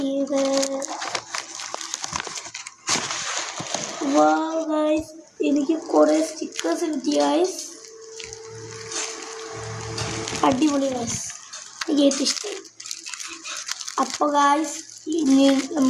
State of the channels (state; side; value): identical; both; correlation 1.00